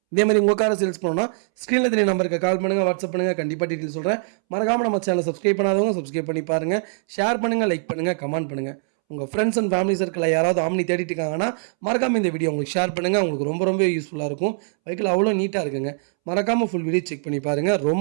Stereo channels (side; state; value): left; silent; 64 dB below the other